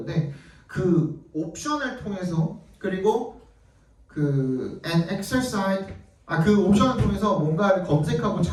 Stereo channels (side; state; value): both; identical; correlation 1.00